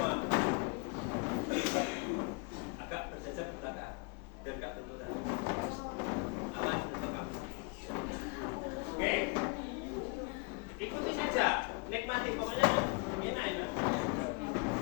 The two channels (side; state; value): right; quieter; 31.9 dB